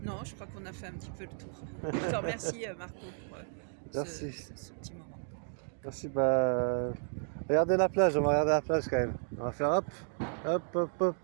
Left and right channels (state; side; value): silent; left; 56 dB below the other